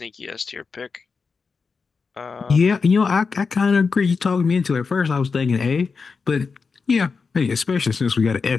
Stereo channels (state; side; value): quieter; right; 5.0 dB